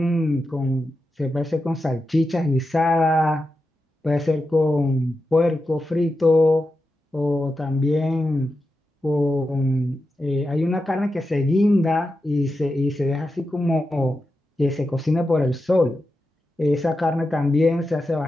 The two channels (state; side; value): normal; both; correlation 0.89